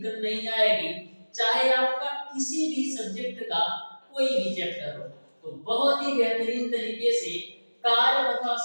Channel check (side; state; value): both; inverted; correlation -1.00